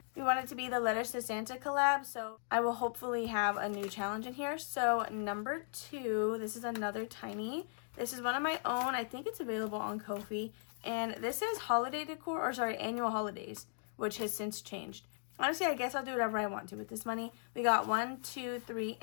We want it to be the Letters to Santa collab. So I will hopefully have a new challenge in here. So number 2, this is another tiny. This is one of my own. I think it's available on Ko-fi. And this is holiday decor, or sorry, annual holidays, which has since changed. Honestly, I guess I'll do whatever I want to with this money. We got $1, $2, $3,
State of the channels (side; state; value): right; silent; digital silence